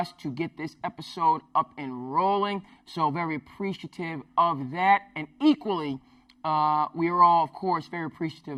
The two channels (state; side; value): identical; both; correlation 1.00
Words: to get this episode up and rolling. So very appreciative of that. And equally, we are all, of course, very